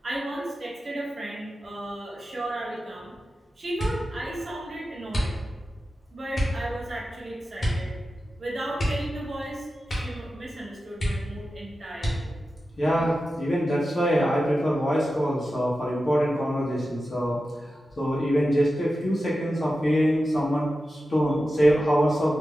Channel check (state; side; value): normal; both; correlation 0.92